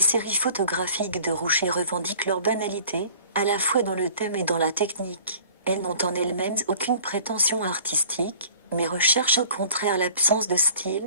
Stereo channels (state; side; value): inverted; both; correlation -0.50